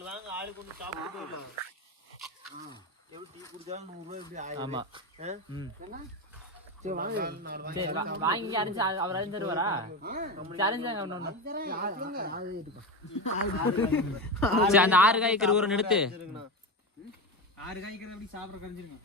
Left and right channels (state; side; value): normal; both; correlation 0.19